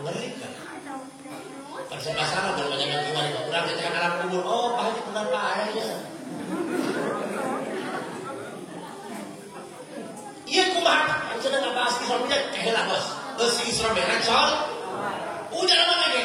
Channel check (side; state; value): both; identical; correlation 1.00